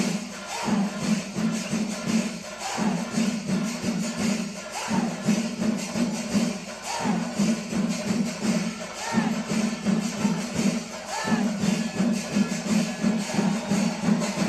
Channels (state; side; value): identical; both; correlation 1.00